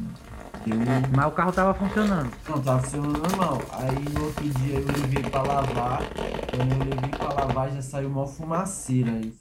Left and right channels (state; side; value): identical; both; correlation 1.00